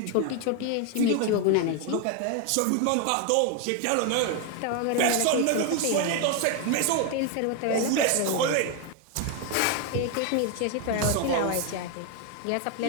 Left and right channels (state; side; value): different; both; correlation 0.01